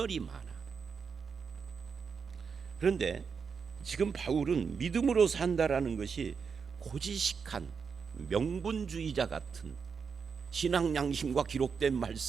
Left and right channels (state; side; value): quieter; left; 5.9 dB